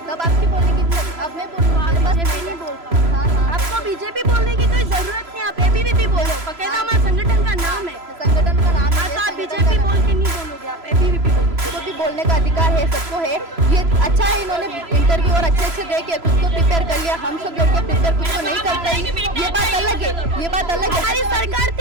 तब आपकी बोलने की अब मैं नहीं बोल पाऊँ। हाँ आपको बीजेपी बोलने की कोई जरूरत नहीं, आप एबीवीपी बोलो, बकायदा हमारे संगठन का नाम है, संगठन का नाम है। तो आप बीजेपी बोल के नहीं बोलोगे, आप एबीवीपी बोलो। सबको भी बोलने का अधिकार है, सबको है। ये अच्छा है इन्होंने इंटरव्यू और अच्छे दे के खुद को प्रिपेयर कर लिया। हम सब लड़के प्रिपेयर कुछ को नहीं करते, ये बात अलग है, ये बात अलग है। हमारी सरकार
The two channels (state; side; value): late; left; 3.0 ms